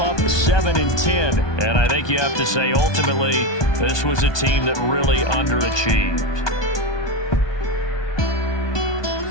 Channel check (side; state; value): right; late; 1.2 ms